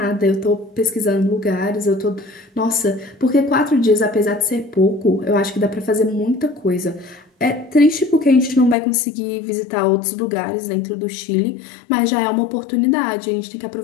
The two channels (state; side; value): drops out; right; at 8.8 s